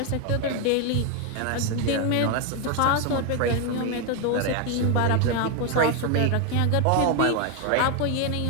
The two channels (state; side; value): different; both; correlation 0.01